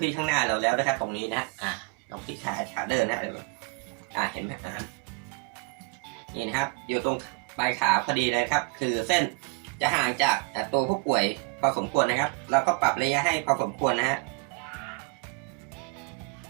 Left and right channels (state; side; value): quieter; left; 32.5 dB